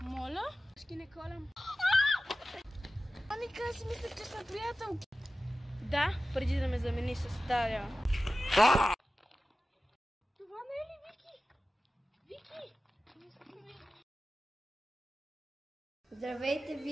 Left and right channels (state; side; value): normal; both; correlation 0.95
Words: Моля? Ще не колям. Аника, аз си мислех, че сме приятелки. Да, преди да ме замени с Даря. Това не е ли Вики? Вики! Здравейте,